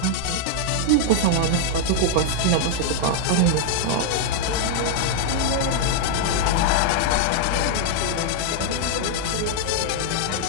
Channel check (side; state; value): both; different; correlation 0.00